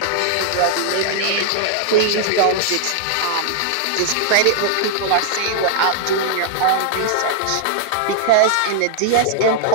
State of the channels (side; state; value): both; different; correlation -0.01